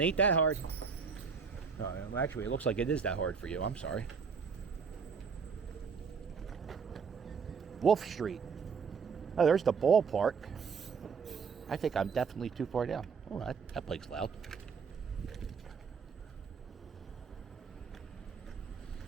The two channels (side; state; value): left; quieter; 5.8 dB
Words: that hard. No, actually, it looks like it is that hard for you. I'm sorry. Wolf Street. Oh, there's the ballpark. I think I'm definitely too far down. Oh, that bike's loud.